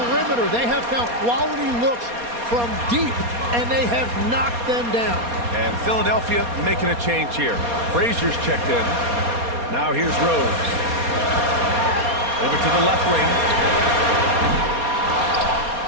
They have found quality looks from deep, and they have knocked them down. And Philadelphia making a change here. Frazier's checked in. Now here's Rose. Over to the left wing.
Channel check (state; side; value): late; left; 4.2 ms